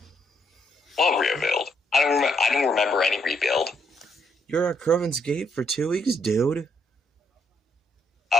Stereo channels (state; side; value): normal; both; correlation 0.73